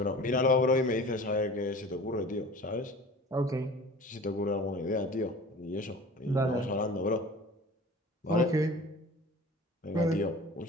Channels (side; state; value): both; normal; correlation 0.41